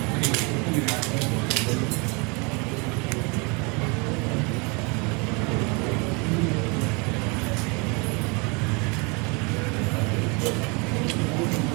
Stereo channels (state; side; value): quieter; left; 30.6 dB